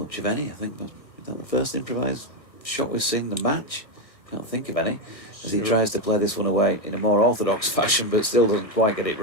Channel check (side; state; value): right; late; 1.5 ms